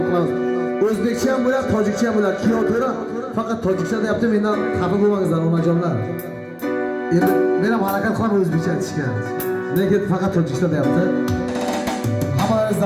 qilamiz. O'zbekcha ham bo'ladi, tojikcha ham bo'ladi. Piyotra faqat tojikcha deyapti, mendan xafa bo'lmangizlar onajonlar. Endi men ham harakat qilaman o'zbekcha aytishga. Lekin faqat tojikcha deyapti. Hammamiz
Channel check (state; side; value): identical; both; correlation 1.00